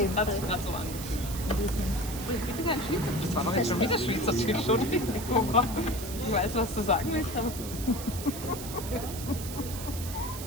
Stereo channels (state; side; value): noise; right; hiss, 10 dB below the sound